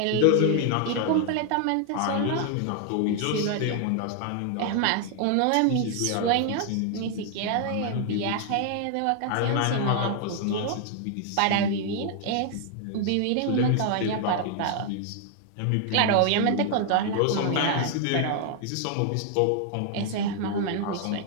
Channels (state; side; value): different; both; correlation 0.00